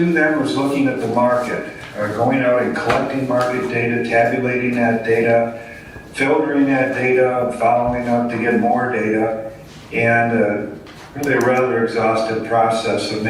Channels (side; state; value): both; identical; correlation 1.00